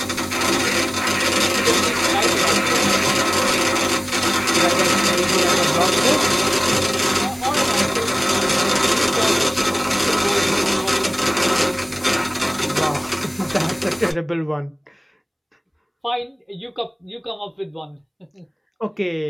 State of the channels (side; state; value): both; identical; correlation 1.00